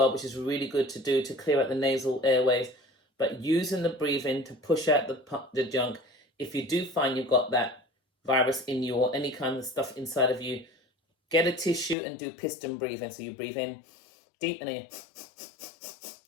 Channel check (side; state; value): right; drops out; at 12.0 s